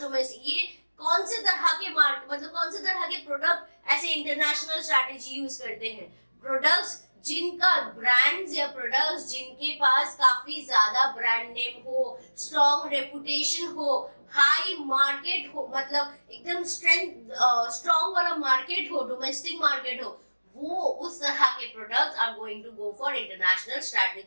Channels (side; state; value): both; inverted; correlation -1.00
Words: domestic, ये कौन से तरह के मार्केट, मतलब कौन से तरह के प्रोडक्ट ऐसे इंटरनेशनल स्ट्रैटेजी यूज करते हैं? प्रोडक्ट्स जिनका ब्रांड्स या प्रोडक्ट्स जिनके पास काफी ज्यादा ब्रांड नेम हो, स्ट्रॉन्ग रेपुटेशन हो, हाई मार्केट हो, मतलब एकदम स्ट्रॉन्ग वाला मार्केट हो, डोमेस्टिक मार्केट हो, वो उस तरह के products are going to go for international